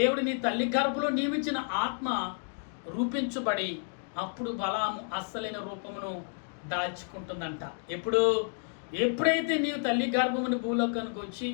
నీ తల్లి గర్భంలో నియమించిన ఆత్మ రూపించబడి అప్పుడు బలాము అస్సలైన రూపమును దాల్చుకుంటుందంట. ఎప్పుడైతే నీవు తల్లి గర్భముని భూలోకానికి వచ్చి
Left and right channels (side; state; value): right; silent; 57 dB below the other